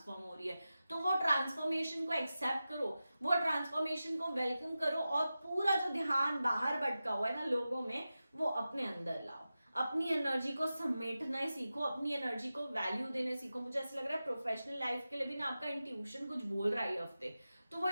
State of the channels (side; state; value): both; inverted; correlation -0.93